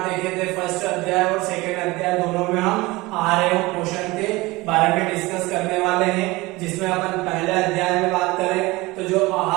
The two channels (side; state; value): left; quieter; 21.6 dB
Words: देखे थे, फर्स्ट अध्याय और सेकेंड अध्याय। दोनों में हम आहार एवं पोषण के बारे में डिस्कस करने वाले हैं, जिसमें अपन पहले अध्याय में बात करें तो जो